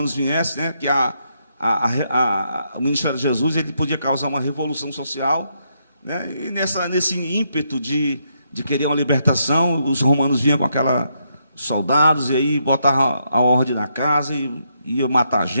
viessem, né, que o ministério de Jesus ele podia causar uma revolução social, né, e nesse ímpeto de querer uma libertação, os romanos vinham com aqueles soldados, e aí botavam a ordem na casa, e ia matar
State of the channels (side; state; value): both; inverted; correlation -0.78